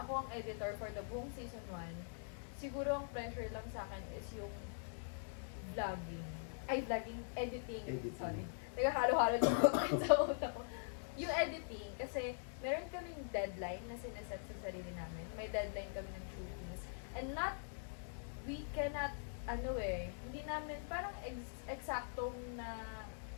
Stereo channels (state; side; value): silent; right; digital silence